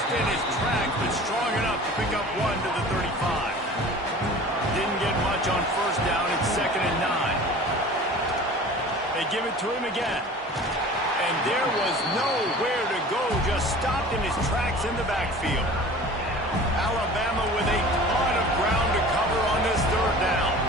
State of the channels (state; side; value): normal; both; correlation 0.42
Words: in his tracks, but strong enough to pick up 1 to the 35. Didn't get much on first down. It's 2nd and 9. They give it to him again. And there was nowhere to go, just stopped in his tracks in the backfield. Alabama with a ton of ground to cover on this 3rd down.